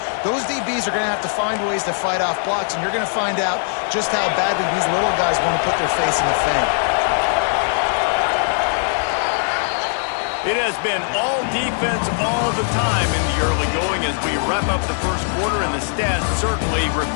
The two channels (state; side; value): silent; right; 66 dB below the other